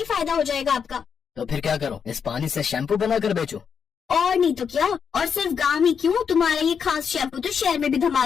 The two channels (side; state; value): right; quieter; 6.8 dB